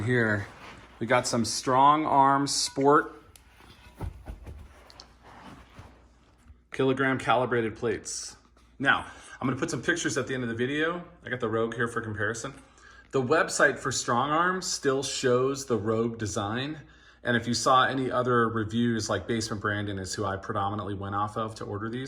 here. We got some StrongArm Sport Calibrated Plates. Now, I'm gonna put some pictures at the end of the video. I got the Rogue here for comparison. The website for StrongArm still shows the Rogue design. And if you saw any other reviews, like Basement Brandon is who I predominantly went off of to order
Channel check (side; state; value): both; identical; correlation 1.00